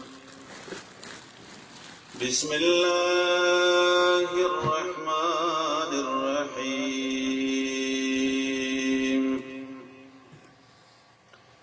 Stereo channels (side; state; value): both; identical; correlation 1.00